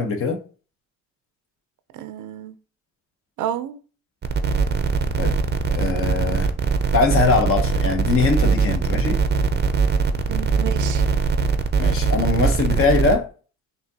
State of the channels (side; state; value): both; normal; correlation 0.47